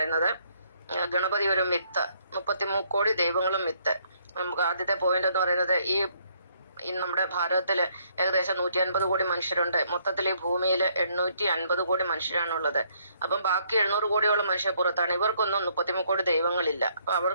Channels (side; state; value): both; inverted; correlation -0.68